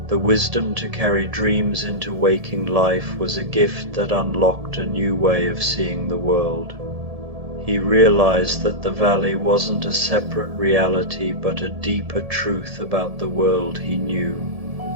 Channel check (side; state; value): left; late; 1.7 ms